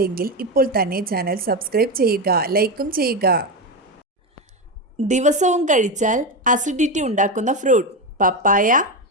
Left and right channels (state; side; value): normal; both; correlation 0.14